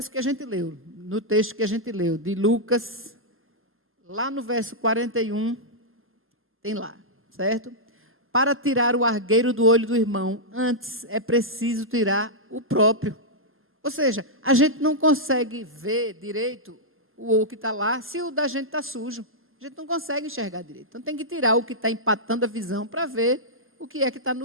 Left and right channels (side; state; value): both; normal; correlation -0.09